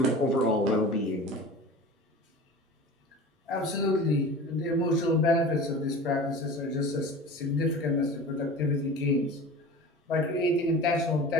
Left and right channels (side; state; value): both; normal; correlation 0.36